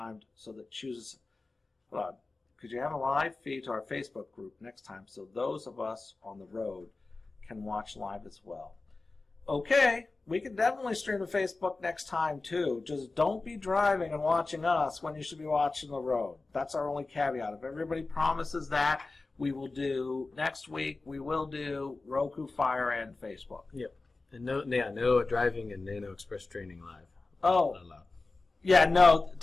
so that chooses. Hold on. Could you have a live feed to our Facebook group next time, so those of us on the road can watch live as well? Okay, we can definitely stream to Facebook next time too. Just don't be driving and watching us when you should be watching the road. That's our only caveat. If everybody promises that, we will do next week. We will do Roku, Fire, and Facebook. Yep. And no driving and Nano Express training live. Oh, yeah, no,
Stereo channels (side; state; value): right; quieter; 3.5 dB